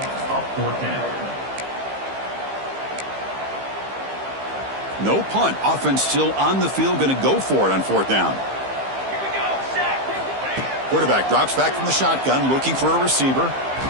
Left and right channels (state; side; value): late; left; 15 ms